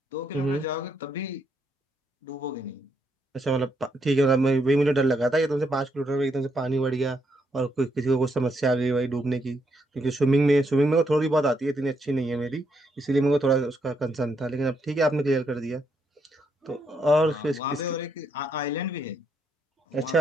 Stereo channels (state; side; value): normal; both; correlation 0.76